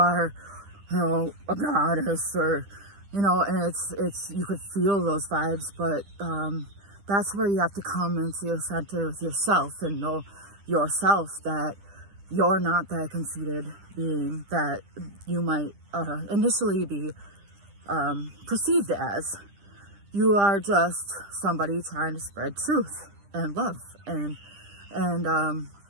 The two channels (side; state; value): left; late; 10 ms